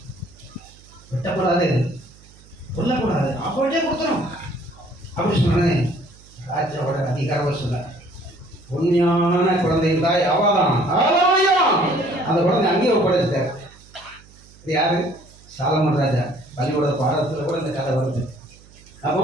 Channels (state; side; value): noise; right; hum, 25 dB below the sound